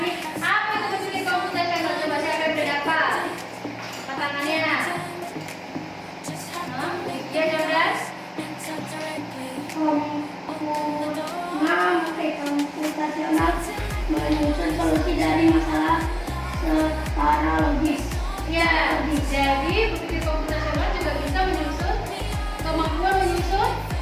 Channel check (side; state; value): both; identical; correlation 1.00